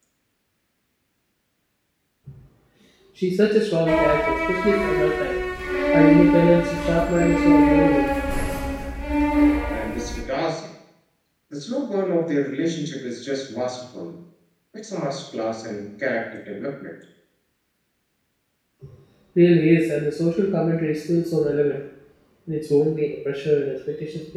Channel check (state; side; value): identical; both; correlation 1.00